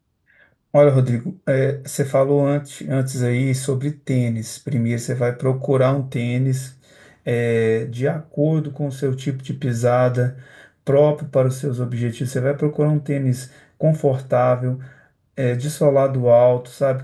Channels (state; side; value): identical; both; correlation 1.00